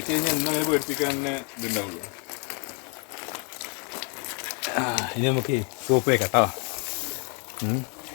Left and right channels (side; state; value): right; quieter; 37.3 dB